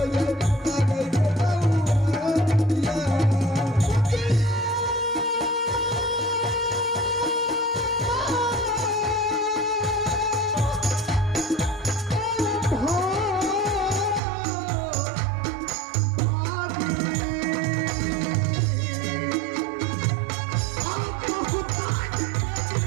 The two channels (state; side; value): drops out; left; at 14.2 s